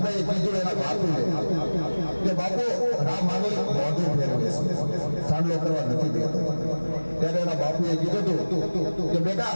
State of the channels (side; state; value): both; inverted; correlation -1.00